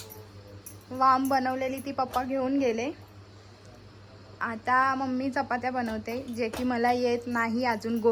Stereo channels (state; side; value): identical; both; correlation 1.00